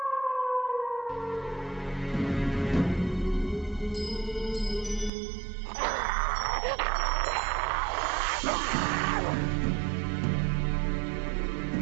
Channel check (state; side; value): drops out; left; at 5.1 s